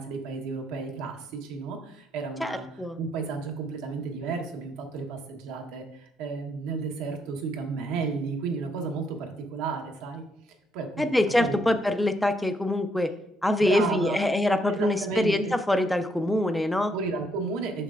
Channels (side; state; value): both; normal; correlation 0.73